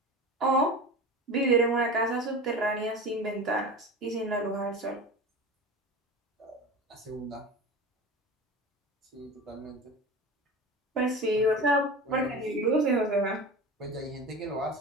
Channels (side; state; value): both; normal; correlation 0.32